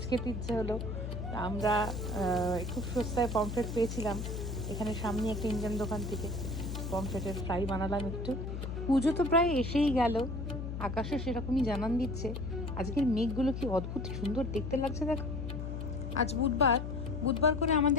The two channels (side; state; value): left; noise; hum, 5 dB below the sound